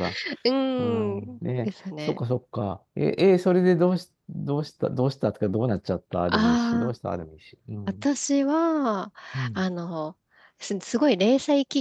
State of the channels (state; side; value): identical; both; correlation 1.00